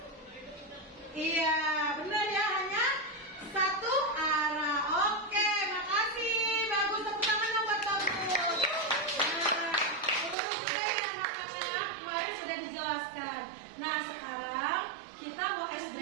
iya benar ya, hanya satu arah. Oke, makasih, bagus, tepuk tangan dong buat bagus. Nah, ya anak-anak, kemarin sudah dijelaskan. Nah sekarang kita mau ice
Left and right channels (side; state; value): left; drops out; at 10.4 s